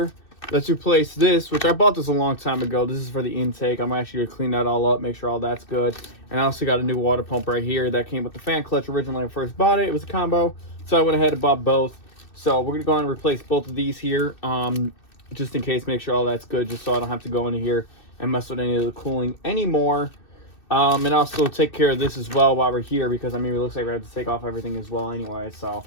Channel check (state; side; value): late; right; 2.6 ms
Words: let's replace this, which I bought this a long time ago. This is for the intake. I'm actually gonna clean that all up, make sure all that's good. And I also got a new water pump right here that came with the fan clutch originally when I first bought it. It was a combo, so I went ahead and bought both. So we're gonna go on and replace both of these here, just in case, make sure all that's good, just so I don't have to go into here and mess with any of the cooling anymore. And also take care of this as well while we're here, because I mean, it looks like we have to take off everything as well anyway. So